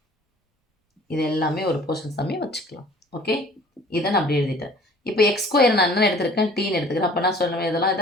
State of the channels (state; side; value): normal; both; correlation 0.50